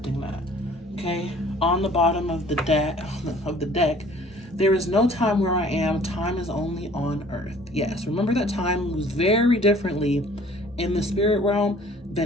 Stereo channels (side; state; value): both; normal; correlation 0.52